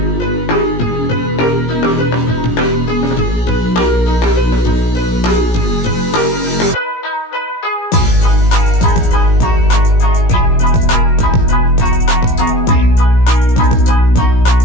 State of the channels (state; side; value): late; right; 17 ms